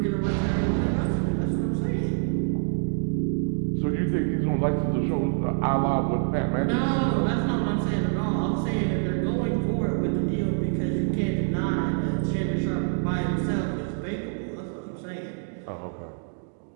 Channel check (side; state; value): left; silent; digital silence